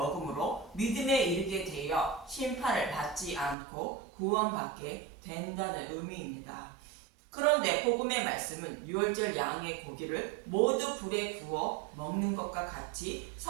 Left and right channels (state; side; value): drops out; left; at 3.6 s